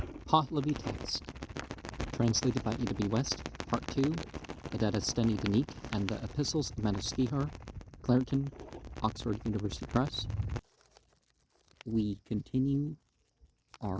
Pahlavi text, translated by E.W. West, Part 2, the Dadistani Dinik, and the Epistles of Manuskrihar, Clareton, Oxford University Press. We continue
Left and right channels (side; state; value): both; identical; correlation 1.00